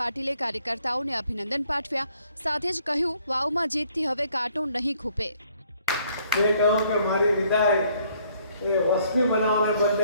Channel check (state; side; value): inverted; both; correlation -0.65